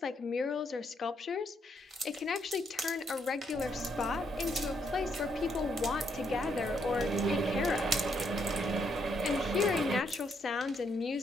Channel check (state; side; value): normal; both; correlation 0.74